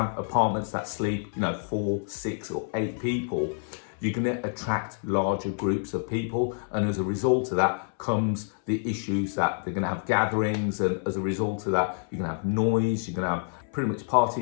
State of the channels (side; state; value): right; silent; 60 dB below the other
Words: apartments that sleep, 4, 6 or 8 people, you're going to attract larger groups of people. And as a result of that comes the issues that they're going to have gatherings. And as a result of that, you're going to have noise, you're going to have pretty much